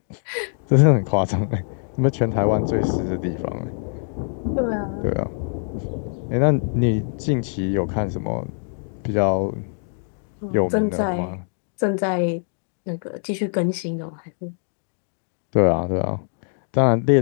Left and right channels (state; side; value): silent; right; 63 dB below the other